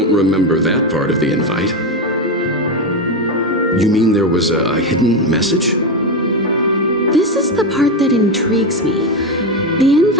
remember that part of the invite. You mean there was a hidden message? This is the part that intrigues me. The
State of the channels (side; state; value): both; normal; correlation 0.13